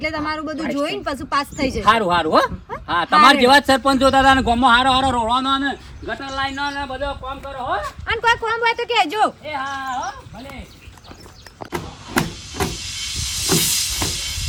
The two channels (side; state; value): both; identical; correlation 1.00